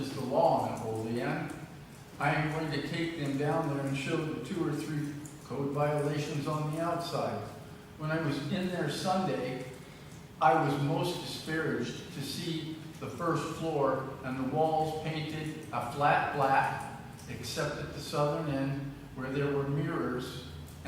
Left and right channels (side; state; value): both; identical; correlation 1.00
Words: is the law in Olean, I am going to take them down there and show the 2 or 3 code violations on the outside. When I was in there Sunday, I was most disparaged to see the first floor and the walls painted a flat black, except at the southern end where there were mirrors